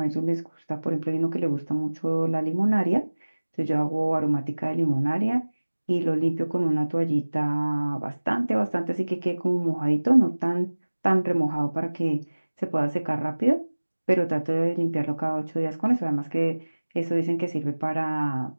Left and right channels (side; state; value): both; inverted; correlation -1.00